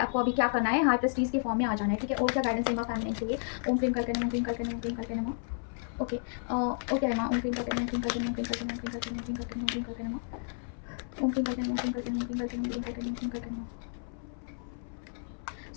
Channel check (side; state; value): right; silent; 57 dB below the other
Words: अभी क्या करना है, हाई प्रेस्टीज के फॉर्म में आ जाना है, ठीक है। और क्या गाइडेंस है माँ फेमिनाइन के लिए? ओम क्लीम करके नमः, ओम क्लीम करके नमः, ओम क्लीम करके नमः, ओके। ओके माँ, ओम क्लीम करके नमः, ओम क्लीम करके नमः, ओम क्लीम करके नमः, ओम क्लीम करके नमः, ओम क्लीम करके नमः, ओम क्लीम करके नमः, ओम क्लीम करके नमः, ओम क्लीम करके नमः, ओम क्लीम करके नमः, ओम क्लीम करके नमः, ओम क्लीम करके नमः।